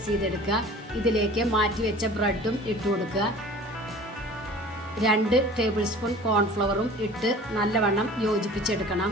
ചെയ്തെടുക്കുക. ഇതിലേക്ക് മാറ്റി വെച്ച ബ്രെഡും ഇട്ട് കൊടുക്കുക. 2 ടേബിൾ സ്പൂൺ കോൺഫ്ലവറും ഇട്ട് നല്ലവണ്ണം യോജിപ്പിച്ചെടുക്കണം.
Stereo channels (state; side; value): normal; both; correlation 0.44